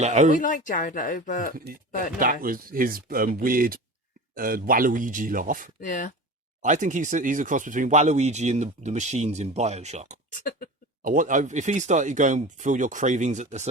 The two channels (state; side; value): normal; both; correlation 0.33